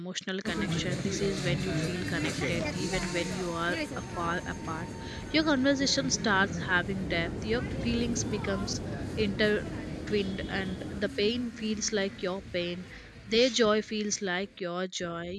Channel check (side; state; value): both; identical; correlation 1.00